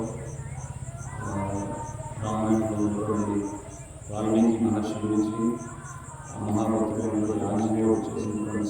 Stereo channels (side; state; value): both; identical; correlation 1.00